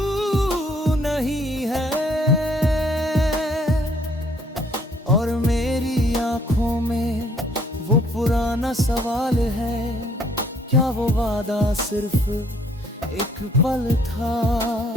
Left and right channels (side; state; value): both; normal; correlation 0.64